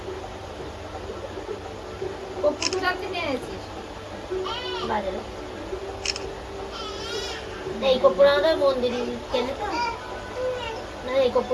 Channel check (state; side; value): identical; both; correlation 1.00